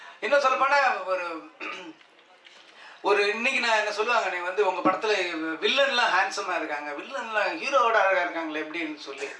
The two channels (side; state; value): both; identical; correlation 1.00